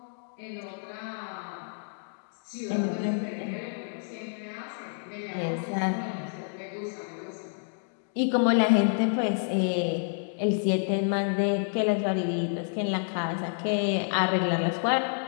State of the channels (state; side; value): silent; right; 59 dB below the other